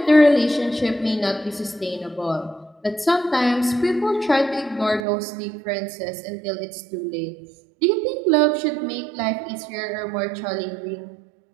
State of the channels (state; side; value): drops out; left; at 5.1 s